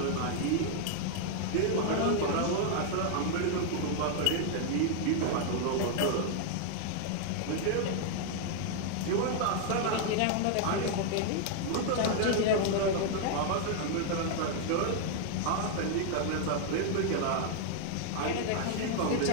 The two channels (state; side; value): different; both; correlation 0.00